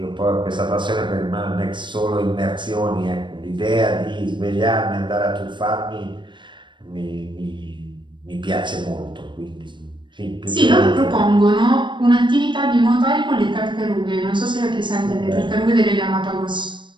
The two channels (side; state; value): left; late; 0.23 ms